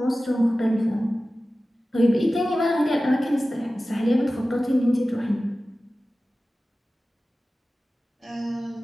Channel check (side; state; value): both; normal; correlation 0.96